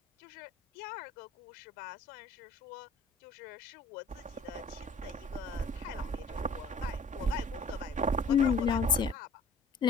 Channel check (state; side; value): quieter; right; 3.0 dB